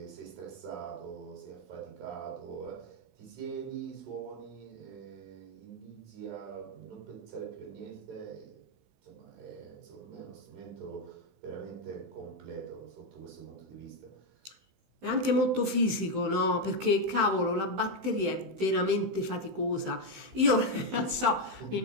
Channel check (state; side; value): late; left; 16 ms